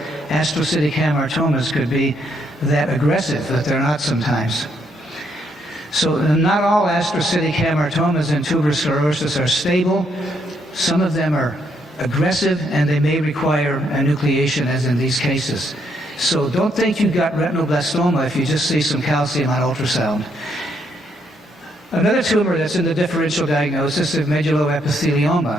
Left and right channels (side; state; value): both; normal; correlation 0.74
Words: astrocytic hamartomas could be that aggressive, but they're not sometimes. So not all astrocytic hamartomas and tuberous sclerosis are stable. Some of them are aggressive, and they may require enucleation, as in these cases. So don't think you've got retinoblastoma if you just see some calcium on ultrasound. Another tumor that's in the differential diagnosis is